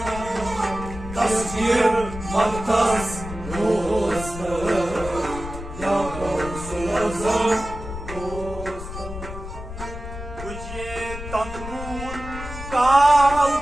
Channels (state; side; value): noise; left; rumble, 10 dB below the sound